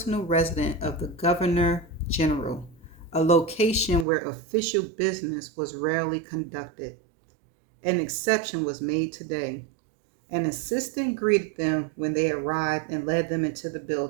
residence of the Governor General, a location where official business was rarely conducted. An exception was made today. An assistant greeted them when they arrived and led them into the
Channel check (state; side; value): drops out; left; at 4.0 s